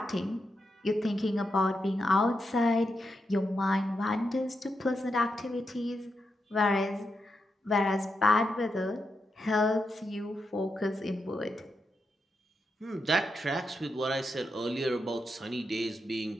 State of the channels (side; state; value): both; normal; correlation 0.85